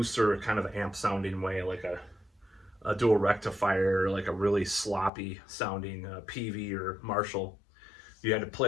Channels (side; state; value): right; drops out; at 5.1 s